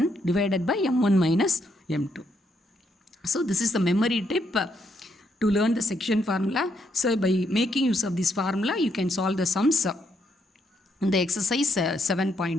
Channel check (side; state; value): both; normal; correlation 0.75